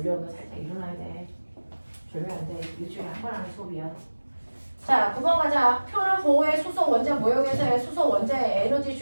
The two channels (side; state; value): both; inverted; correlation -1.00